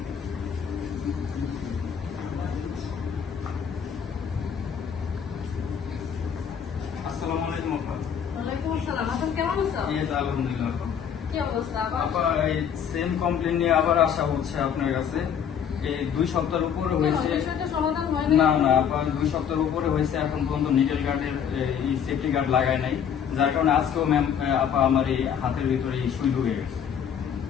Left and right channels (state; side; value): quieter; right; 8.0 dB